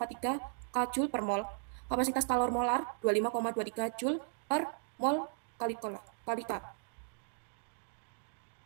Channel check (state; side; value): silent; left; digital silence